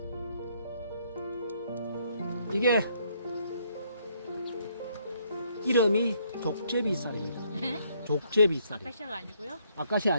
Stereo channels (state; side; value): inverted; both; correlation -0.69